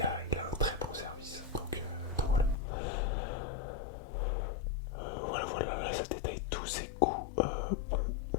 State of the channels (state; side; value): drops out; right; at 2.6 s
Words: a un très bon service. Donc voilà. Voilà, là, ça détaille tous ses coups. Bon, on